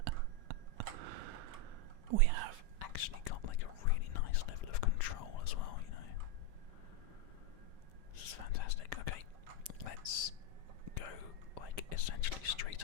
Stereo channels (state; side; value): late; left; 5.0 ms